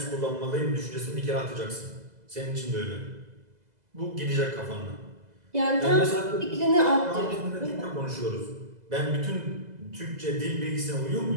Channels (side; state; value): left; late; 2.0 ms